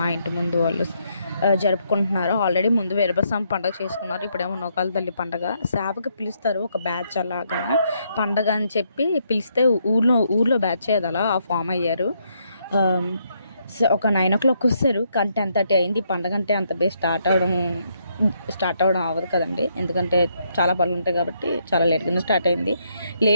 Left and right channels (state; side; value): inverted; both; correlation -0.75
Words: ఇంటి ముందు వాళ్ళు జరుపుకుంటున్నారు. ఆల్రెడీ ముందు వీరభద్రస్వామి పండగ చేసుకున్నారు. ఇప్పుడేమో నూకాల తల్లి పండగ. సేవకి పిలుస్తారు ఒక బ్యాచ్ అలాగా. పండగ అని చెప్పి పిలిస్తే ఊర్లో బ్యాచ్ అది అలా ఫామ్ అయ్యారు. ఒక 9 o'clock వస్తారు. కానీ 10:30 అయింది. ఈ పండగ అంటే అంత బే స్టార్ట్ అవ్వడం అవ్వదు కదండి. ఎందుకంటే చాలా పనులు ఉంటాయి కాబట్టి చాలా లేట్గానే స్టార్ట్ అయింది.